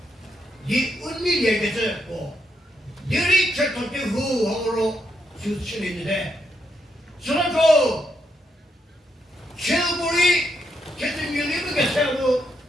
네 은밀 얘기해서 뭐 너리 철통기 후하로 주치는데 저런도 최고리 계속 밀리는 게 세우고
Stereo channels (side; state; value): both; normal; correlation 0.79